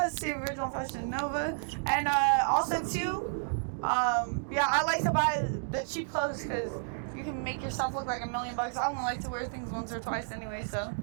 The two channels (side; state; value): left; silent; digital silence